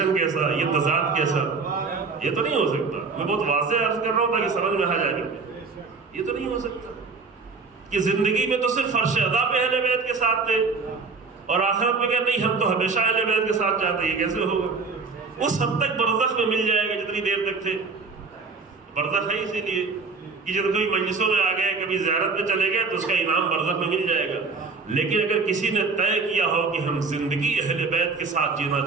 کیسا، یہ تضاد کیسا؟ یہ تو نہیں ہو سکتا۔ میں بہت واضح عرض کر رہا ہوں تاکہ سمجھ میں آ جائے، یہ تو نہیں ہو سکتا کہ زندگی میں تو صرف فرش ادا پہ اہل بیت کے ساتھ تھے اور آخرت میں کہ نہیں ہم تو ہمیشہ اہل بیت کے ساتھ جاتے ہیں، یہ کیسے ہوگا؟ اس حد تک برزخ میں مل جائے گا جتنی دیر تک تھے۔ برزخ ہے اسی لیے کہ جب کوئی مجلسوں میں آ گئے، کبھی زیارت میں چلے گئے تو اس کا انعام برزخ میں مل جائے گا۔ لیکن اگر کسی نے طے کیا ہو کہ ہم زندگی اہل بیت کے ساتھ جینا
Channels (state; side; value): quieter; left; 4.4 dB